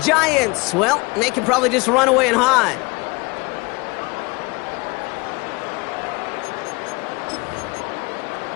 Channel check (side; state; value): right; quieter; 26.7 dB